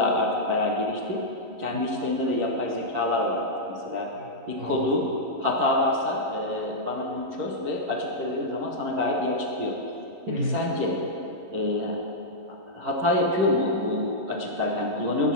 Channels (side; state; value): left; late; 11 ms